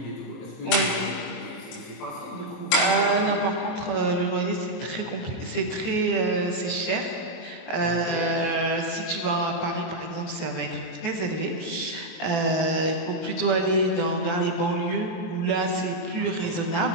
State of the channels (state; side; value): late; right; 23 ms